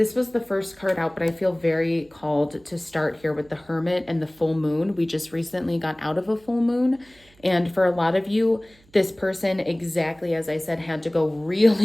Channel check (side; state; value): right; noise; hum, 30 dB below the sound